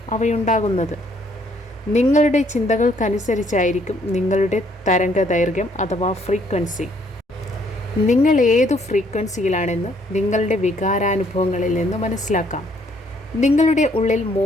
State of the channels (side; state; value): both; normal; correlation 0.66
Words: അവയുണ്ടാകുന്നത്. നിങ്ങളുടെ ചിന്തകൾക്കനുസരിച്ചായിരിക്കും നിങ്ങളുടെ തരംഗദൈർഘ്യം അഥവാ ഫ്രീക്വൻസി. നിങ്ങൾ ഏതു ഫ്രീക്വൻസിയിലാണെന്ന് നിങ്ങളുടെ വികാരാനുഭവങ്ങളിൽ നിന്ന് മനസ്സിലാക്കാം. നിങ്ങളുടെ ഉള്ളിൽ